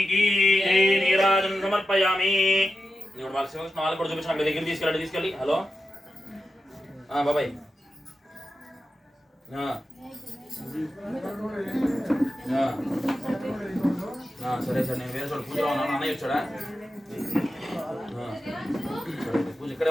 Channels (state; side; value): normal; both; correlation 0.91